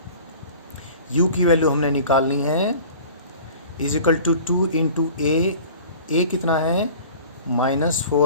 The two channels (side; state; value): both; inverted; correlation -0.44